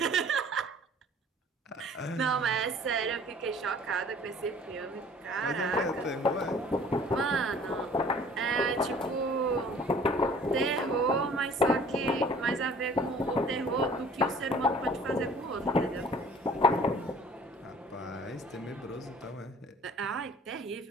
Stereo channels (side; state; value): both; normal; correlation 0.50